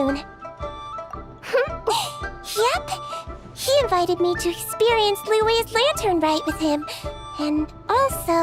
Yep. He invited me to experience Liu's lantern rite with him, and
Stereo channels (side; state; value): both; identical; correlation 1.00